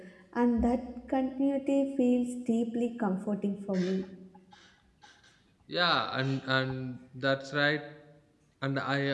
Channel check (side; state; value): both; identical; correlation 1.00